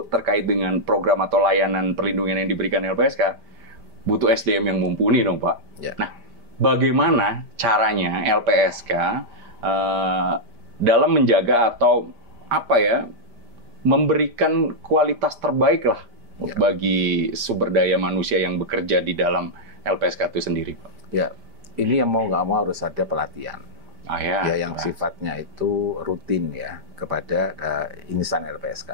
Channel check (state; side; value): late; left; 5.1 ms